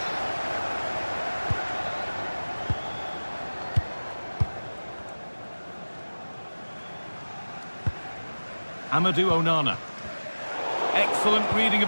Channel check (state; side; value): inverted; both; correlation -1.00